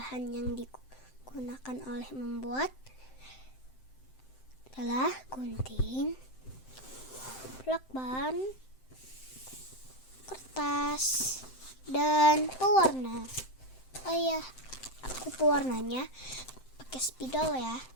yang digunakan oleh membuat adalah gunting, lakban, kertas, dan pewarna. Oh iya, aku pewarnanya pakai spidol ya.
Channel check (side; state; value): right; late; 7.7 ms